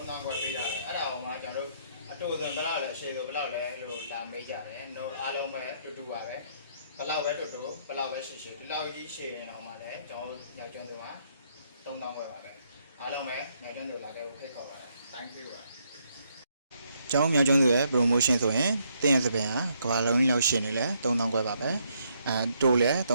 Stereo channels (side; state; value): both; inverted; correlation -0.72